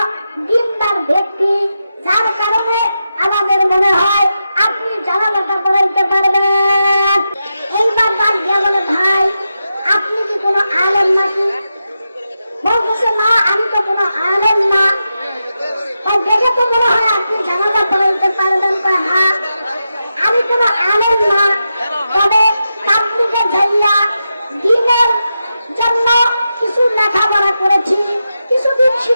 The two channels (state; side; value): inverted; both; correlation -0.89